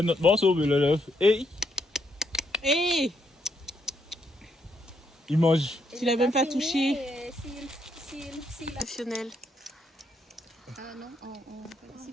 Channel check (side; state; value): both; normal; correlation 0.76